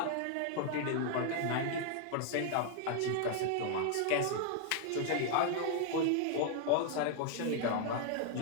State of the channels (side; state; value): both; different; correlation 0.00